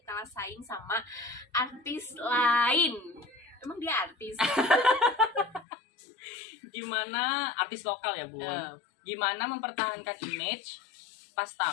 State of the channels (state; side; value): drops out; right; at 5.7 s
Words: kalah saing sama artis lain? Emang dia artis? Gimana artis lokal ya Bun? Gimana mempertahankan image pas